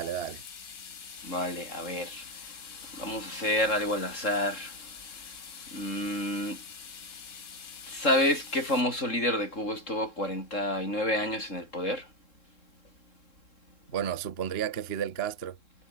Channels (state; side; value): late; right; 3.7 ms